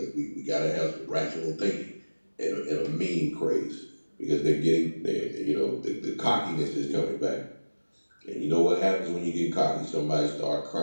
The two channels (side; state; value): both; inverted; correlation -1.00